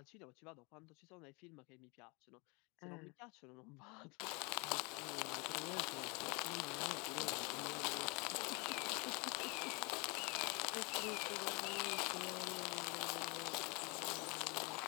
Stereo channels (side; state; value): right; quieter; 29.7 dB